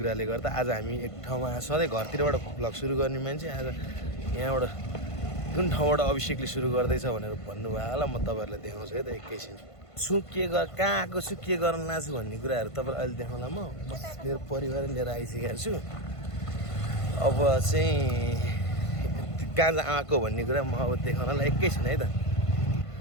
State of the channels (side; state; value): right; late; 1.5 ms